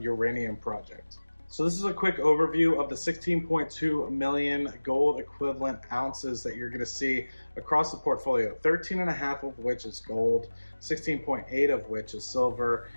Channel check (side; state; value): both; inverted; correlation -1.00